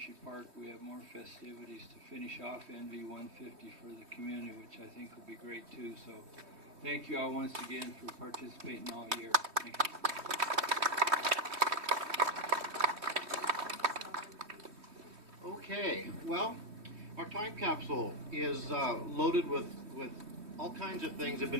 Park, we have more festivities to finish off NV 150 for the community, which I think will be great too. So thank you all once again for participating all year. Thank you. Okay, well, our time capsule is loaded with all kinds of things that have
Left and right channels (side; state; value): left; late; 3.2 ms